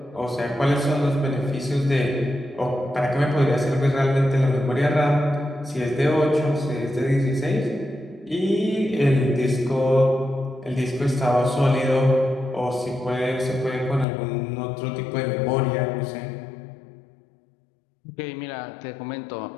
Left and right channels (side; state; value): right; drops out; at 14.1 s